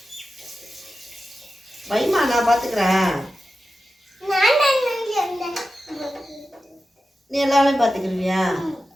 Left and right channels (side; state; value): both; normal; correlation 0.92